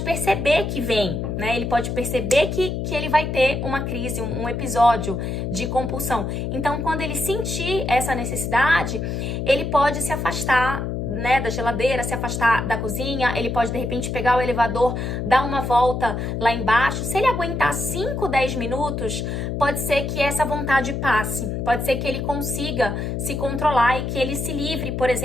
perceber que vem, né, ele pode perceber que ele vai ter uma crise, um episódio de compulsão. Então, quando ele sentir essa necessidade, ele pode se afastar, né, da geladeira, se afastar da cozinha, ele pode de repente pegar o elevador, dar uma volta lá embaixo. Se ele aguentar 5, 10 minutos, pode ser que essa vontade passe, pode ser que ele consiga se controlar e que ele se livre, por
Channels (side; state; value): left; noise; hum, 3 dB below the sound